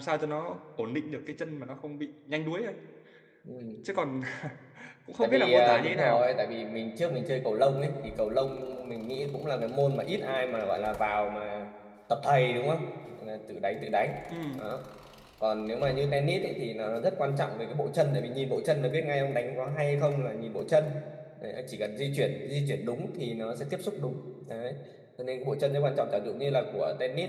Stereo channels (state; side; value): identical; both; correlation 1.00